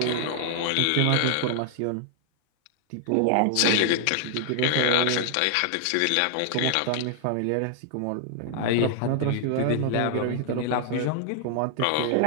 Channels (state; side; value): different; both; correlation 0.00